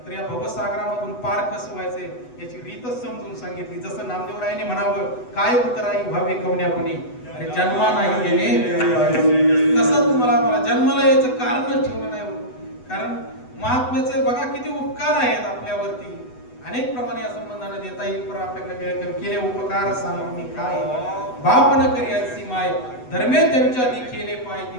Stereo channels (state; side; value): late; right; 8.0 ms